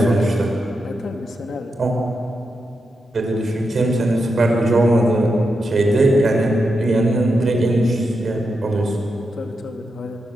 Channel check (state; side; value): normal; both; correlation 0.86